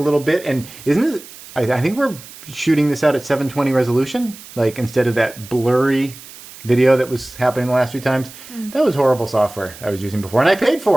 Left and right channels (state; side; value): noise; right; hiss, 18 dB below the sound